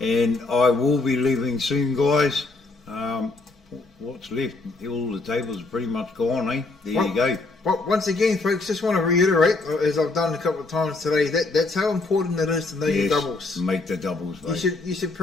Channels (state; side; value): quieter; right; 3.4 dB